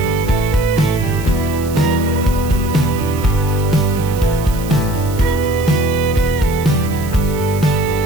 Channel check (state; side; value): noise; right; hiss, 16 dB below the sound